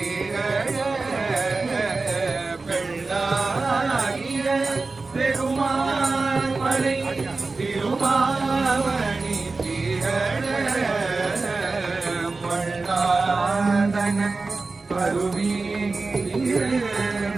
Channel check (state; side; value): quieter; left; 3.8 dB